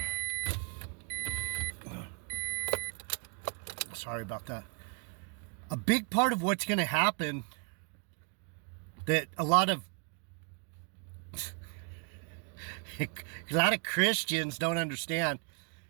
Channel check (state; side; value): quieter; left; 37.7 dB